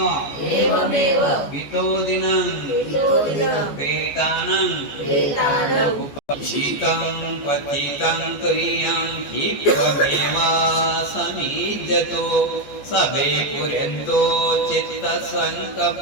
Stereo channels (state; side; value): late; right; 14 ms